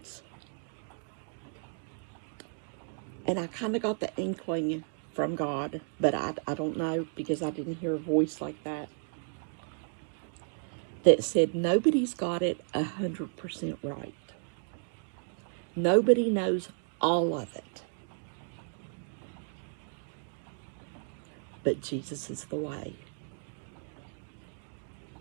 And I kind of got the inkling from God, but I don't know, because I didn't hear a voice like that said nobody's got it 100% right. Nobody knows all of it. But Jesus is the way.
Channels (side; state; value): left; silent; 55 dB below the other